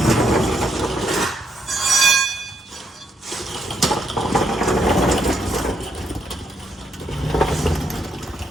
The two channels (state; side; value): normal; both; correlation 0.75